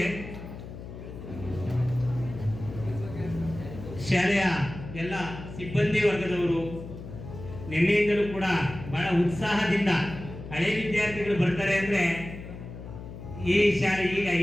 ಶಾಲೆಯ ಎಲ್ಲ ಸಿಬ್ಬಂದಿ ವರ್ಗದವರು ನಿನ್ನೆಯಿಂದಲೂ ಕೂಡ ಬಹಳ ಉತ್ಸಾಹದಿಂದ ಹಳೆ ವಿದ್ಯಾರ್ಥಿಗಳು ಬರ್ತಾರೆ ಅಂದ್ರೆ ಈ ಶಾಲೆ ಈಗ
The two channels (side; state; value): left; noise; hum, 12 dB below the sound